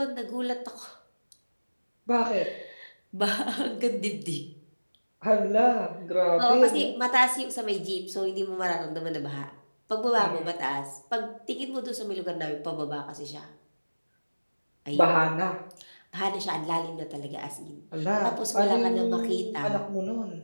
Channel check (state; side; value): inverted; both; correlation -1.00